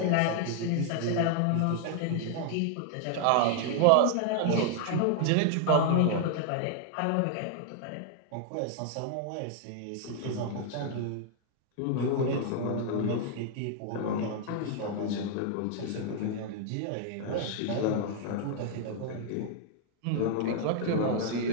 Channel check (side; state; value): both; different; correlation 0.00